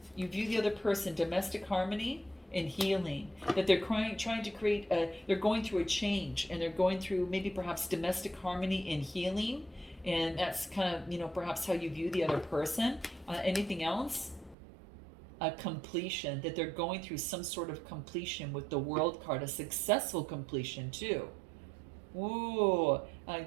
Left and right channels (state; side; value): drops out; left; at 14.6 s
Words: You view the other person, domestic harmony and healing. That they're trying to create, they're going through a change, and they're going through maybe perhaps domestic harmony and healing. And that's kind of, perhaps how you view the other person. Anything else? A completion, that they're going through some sort of completion with the World card, a successful completion too. Ooh,